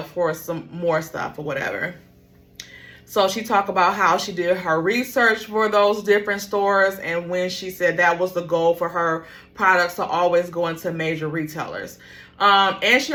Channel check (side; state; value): both; identical; correlation 1.00